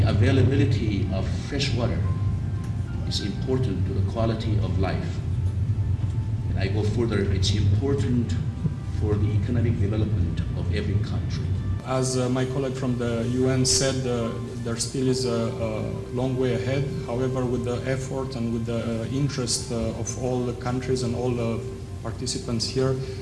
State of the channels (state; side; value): identical; both; correlation 1.00